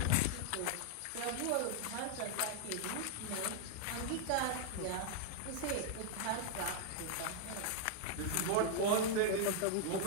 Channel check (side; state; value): both; different; correlation 0.00